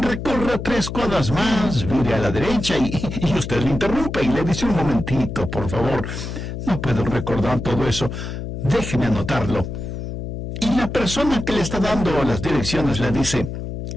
3 cuadras más, vire a la derecha, y usted le interrumpe y le dice, un momentito, por favor, no puedo recordar todo eso, déjeme anotarlo. Y la persona que le está dando las direcciones le dice,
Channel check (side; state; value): left; noise; hum, 6 dB below the sound